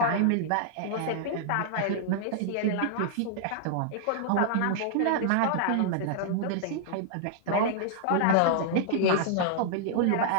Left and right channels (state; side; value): different; both; correlation -0.01